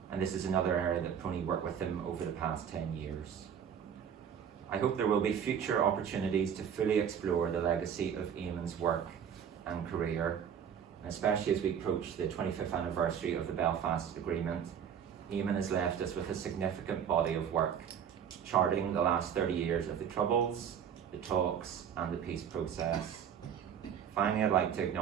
and this is another area that PRONI worked with him over the past 10 years. I hope there will be future opportunities to fully explore the legacy of Eamon's work and career, and especially as we approach the 25th anniversary of the Belfast Agreement. Eamon has left us with a significant body of work, charting the last 30 years of the Troubles, the talks, and the peace process. Finally, I'd like to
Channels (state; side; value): quieter; left; 8.2 dB